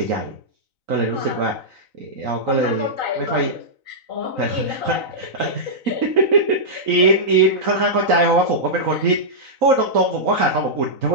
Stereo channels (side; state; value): left; late; 3.9 ms